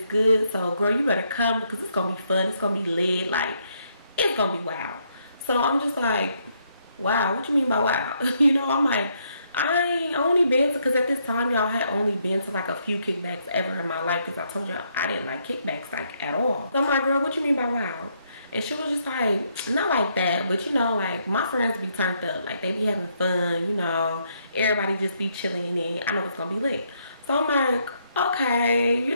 good, so girl, you better come because it's gonna be fun. It's gonna be lit. Like it's gonna be wild. So I'm just like, wow, what you mean by wow? You know, I'm like, I only been to, because at this time y'all had only been to like a few kickbacks ever in my life, because I told you I didn't like kickbacks like at all. So I'm like, girl, what you mean by wow? And she was just like, not like that, but you know, like my friends be turned up, like they be having fun, you know, everybody just be chilling, and I know it's gonna be lit. So I'm like, okay, you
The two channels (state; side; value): inverted; both; correlation -0.74